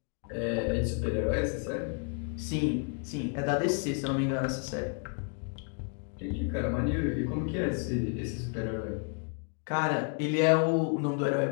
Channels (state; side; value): quieter; right; 39.2 dB